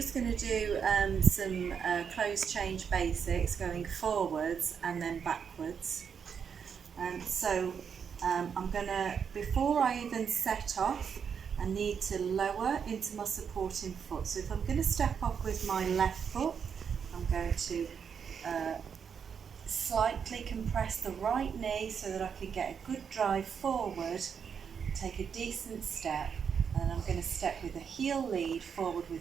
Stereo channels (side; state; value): left; quieter; 6.9 dB